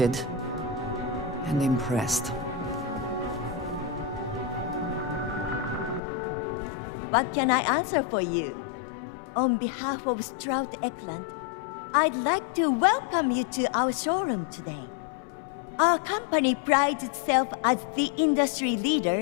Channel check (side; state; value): right; drops out; at 6.0 s